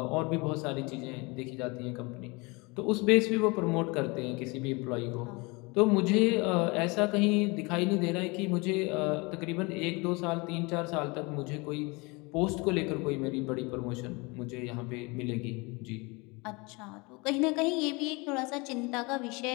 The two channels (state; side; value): quieter; right; 27.0 dB